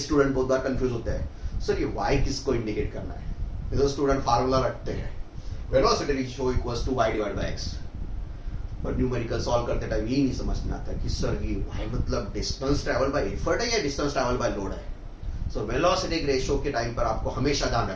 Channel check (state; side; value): identical; both; correlation 1.00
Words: बहुत बार कंफ्यूज होते हैं, सर ये y किसको इंडिकेट करना है। तो स्टूडेंट फार्मूला रखते हैं velocity ratio equals to y divide by x, और न्यूमेरिकल सॉल्व करते टाइम ये नहीं समझ में आता कि सर ये y मतलब डिस्टेंस ट्रैवल बाय एफर्ट है या डिस्टेंस ट्रैवल बाय लोड है। सो वेलोसिटी रेशियो के टाइम पर आपको हमेशा ध्यान